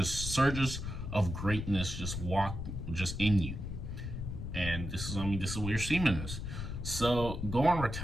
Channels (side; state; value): left; noise; rumble, 5 dB below the sound